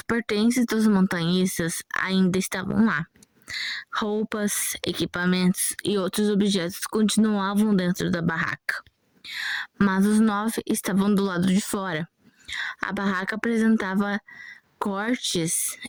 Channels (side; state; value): both; identical; correlation 1.00